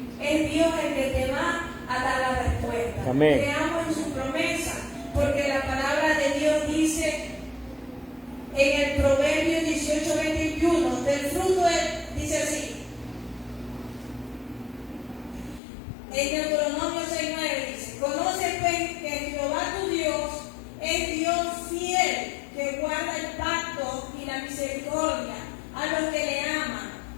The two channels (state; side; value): drops out; right; at 15.6 s